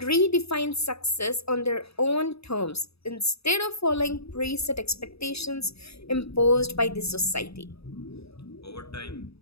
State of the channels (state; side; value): late; right; 0.78 ms